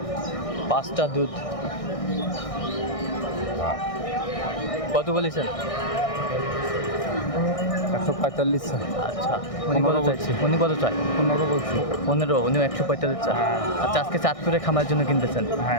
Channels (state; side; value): late; right; 1.6 ms